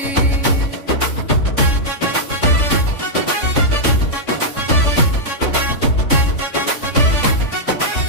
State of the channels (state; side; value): late; right; 3.5 ms